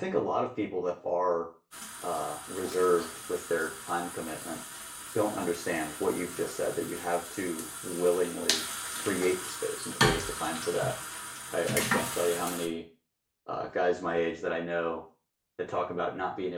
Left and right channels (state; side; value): identical; both; correlation 1.00